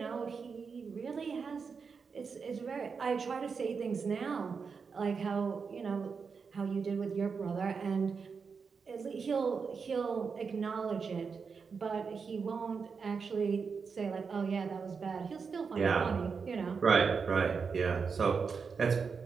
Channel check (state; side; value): quieter; left; 5.5 dB